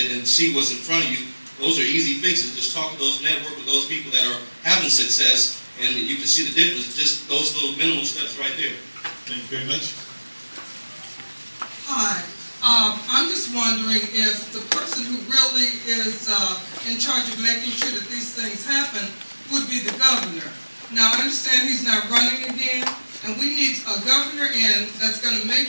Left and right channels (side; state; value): both; inverted; correlation -1.00